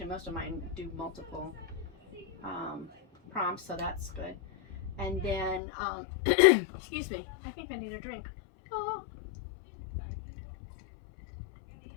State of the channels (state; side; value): drops out; right; at 5.6 s